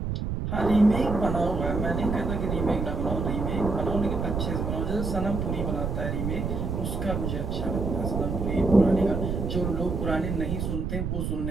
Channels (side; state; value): right; noise; rumble, 2 dB below the sound